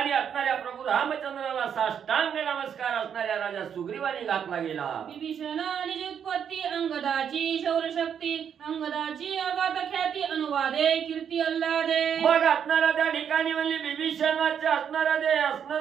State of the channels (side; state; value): left; quieter; 8.1 dB